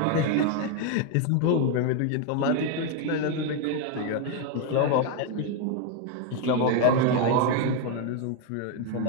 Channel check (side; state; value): both; different; correlation 0.01